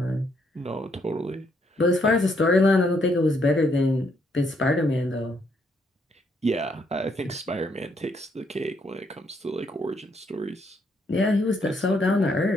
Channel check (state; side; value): normal; both; correlation 0.73